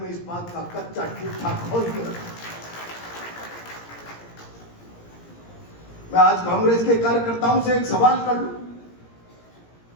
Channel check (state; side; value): late; right; 17 ms